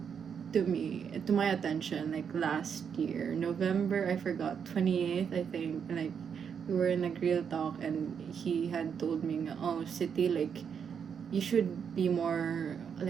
to my attention like last year November, I forgot, 28th, I think. Like we were in a grill talk and he had told me, oh, City, like you should be more,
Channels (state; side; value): quieter; left; 7.2 dB